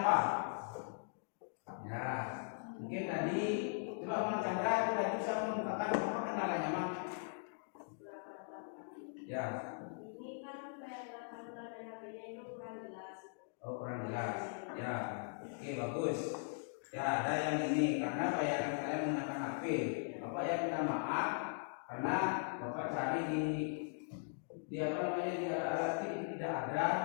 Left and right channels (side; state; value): right; silent; digital silence